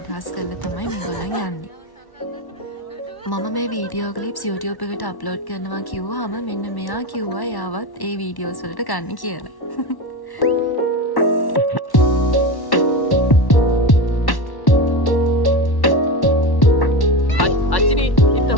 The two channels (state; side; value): late; right; 1.1 ms